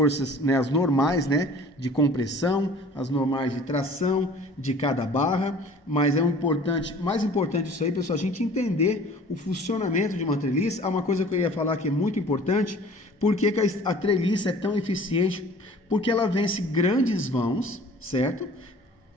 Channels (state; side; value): normal; both; correlation 0.48